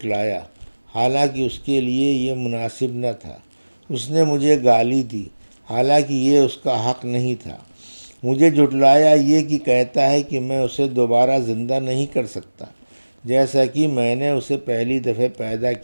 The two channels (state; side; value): inverted; both; correlation -1.00